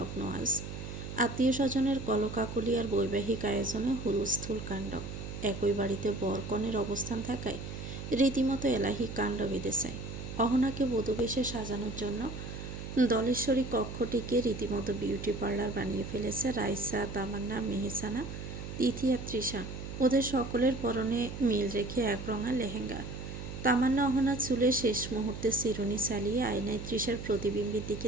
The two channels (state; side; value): noise; right; hum, 8 dB below the sound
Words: আজ। আত্মীয় স্বজনের কলকাকলি আর বৈবাহিক আয়োজনে হুলস্থুল কাণ্ড। একই বাড়িতে বরকনের অবস্থান থাকায় রীতিমতো এলাহি কাণ্ড বেঁধেছে। অহনাকে বধূবেশে সাজানোর জন্য দলেশ্বরী কক্ষটিকে রীতিমতো বিউটি পার্লার বানিয়ে ফেলেছে রাইসা, তামান্না, মেহসানা, তিথি আর তৃষা। ওদের সকলের পরনে মিল রেখে একরঙা লেহেঙ্গা। তামান্না অহনার চুলে শেষ মুহূর্তে চিরুনি চালিয়ে আয়নায় তৃষার প্রতিবিম্বের